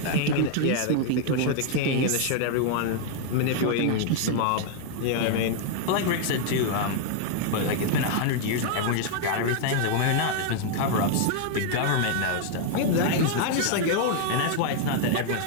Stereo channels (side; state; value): both; different; correlation 0.00